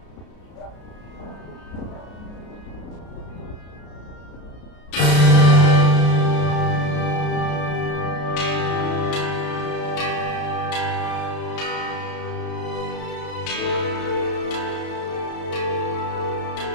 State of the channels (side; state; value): right; late; 33 ms